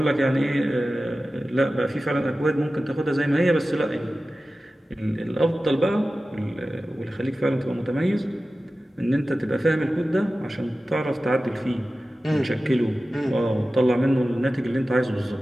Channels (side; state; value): both; normal; correlation 0.95